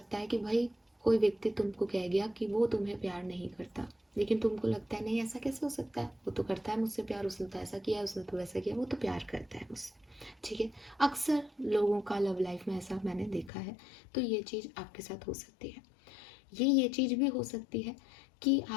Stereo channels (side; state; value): right; drops out; at 13.5 s